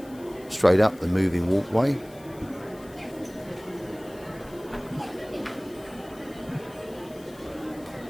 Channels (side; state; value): left; noise; hiss, 24 dB below the sound